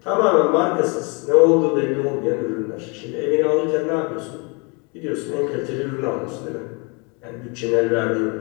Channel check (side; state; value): right; quieter; 31.8 dB